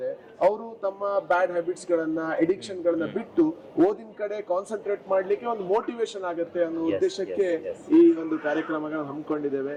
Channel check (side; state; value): both; identical; correlation 1.00